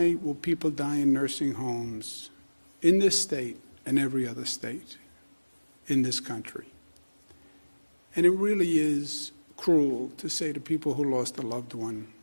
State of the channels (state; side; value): inverted; both; correlation -1.00